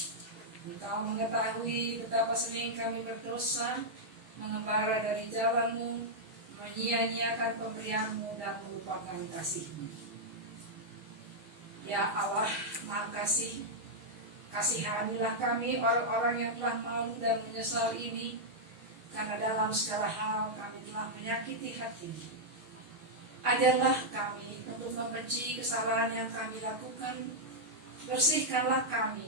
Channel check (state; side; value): late; left; 6.3 ms